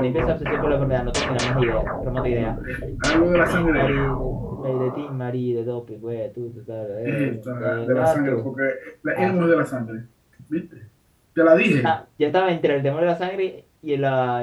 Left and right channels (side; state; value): both; identical; correlation 1.00